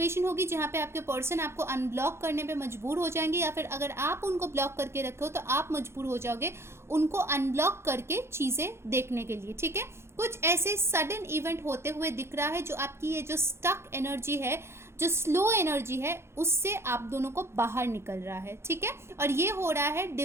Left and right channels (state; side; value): late; left; 0.12 ms